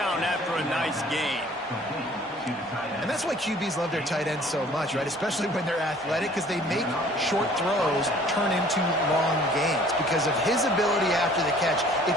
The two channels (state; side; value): normal; both; correlation 0.53